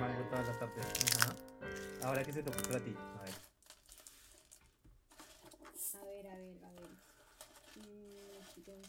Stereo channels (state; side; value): identical; both; correlation 1.00